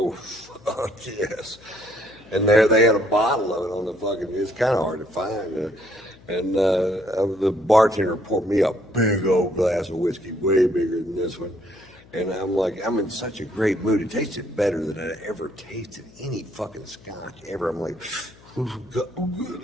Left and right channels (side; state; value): left; noise; hum, 25 dB below the sound